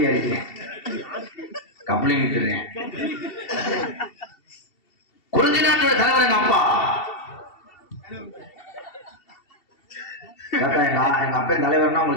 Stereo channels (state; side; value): late; right; 2.7 ms